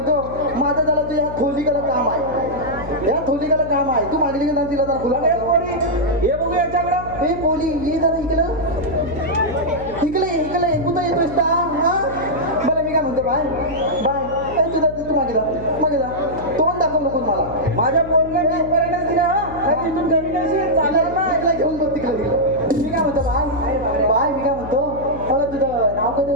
माझं त्याला तुझ्या थोलीकडे काम आहे या थोलीकडे काम आहे तू मागली की नाही तिला जरा फुला हे बघू याच्याकडं हे पोली ये जरा इकडं इकडे कुठं येतोस का हा बरं मी काय म्हणतो बाय बाय ए तुझा तू मागे जा तोंड दाखव नको मला माझ्या पोरला मी पर्यटन दिला हा तिथून घरी नाही चालेल ना ऐकला घेऊन बघ तिकडे मी काय म्हणतो बाय मी काय म्हणतो अगं तुझं नाव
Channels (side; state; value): left; noise; hum, 13 dB below the sound